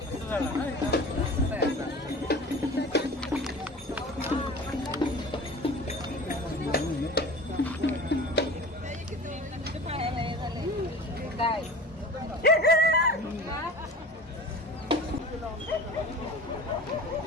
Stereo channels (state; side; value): normal; both; correlation 0.38